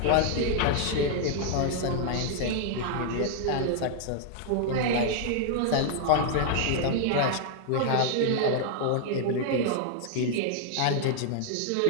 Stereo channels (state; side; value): different; both; correlation 0.00